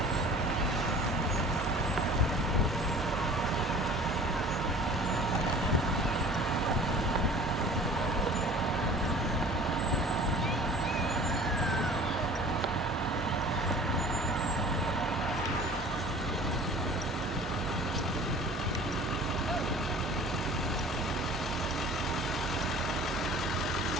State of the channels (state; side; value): normal; both; correlation 0.45